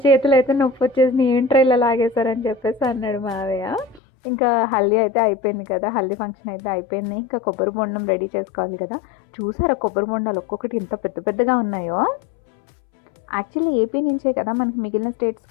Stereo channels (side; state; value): right; drops out; at 4.0 s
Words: చేతులు అయితే నొప్పి వచ్చేసి ఏంట్రా ఇలా లాగేశారని చెప్పేసి అన్నాడు మావయ్య. ఇంకా హల్దీ అయితే అయిపోయింది కదా, హల్దీ ఫంక్షన్ అయితే అయిపోయింది. ఇంకా కొబ్బరి బొండం రెడీ చేసుకోవాలి కదా. చూసారా కొబ్బరి బొండాలు ఒక్కొక్కటి ఇంత పెద్దగా ఉన్నాయో. యాక్చువల్లీ ఏపీ నుంచే కదా మనకి మిగిలిన